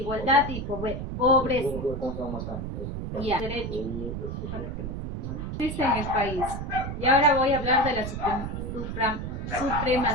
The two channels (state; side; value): noise; right; rumble, 5 dB below the sound